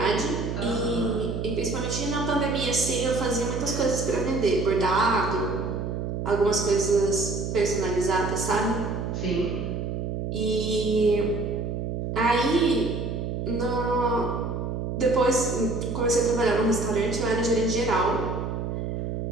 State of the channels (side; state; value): right; noise; hum, 3 dB below the sound